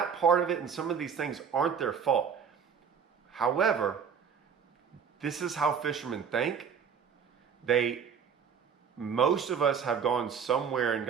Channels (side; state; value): left; quieter; 6.9 dB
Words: part of it, and some of these things aren't their fault. However, this is how fishermen think. Most of us have gone somewhere and